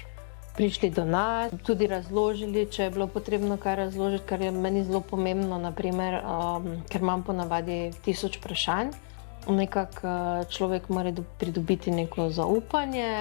prišli do nas, tudi razložili, če je bilo potrebno kaj razložiti, kar je meni zelo pomembno, naprimer, ker imam ponavadi 1000 vprašanj. Nekako človek mora pridobiti neko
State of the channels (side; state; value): right; silent; digital silence